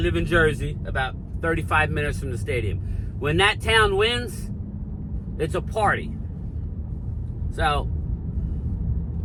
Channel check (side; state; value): both; identical; correlation 1.00